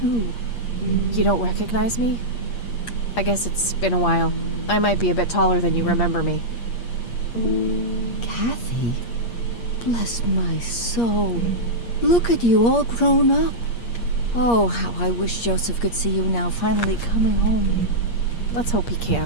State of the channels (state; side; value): late; right; 8.5 ms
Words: Who? You don't recognize me? I guess it's been a while. I might be a bit taller than you remember me. Kathy? Bless my soul. Look at you, all grown up. Oh, how I wish Joseph could see you now, finally coming home. Let's hope he